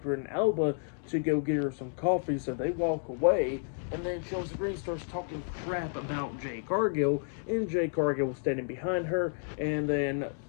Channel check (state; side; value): silent; right; digital silence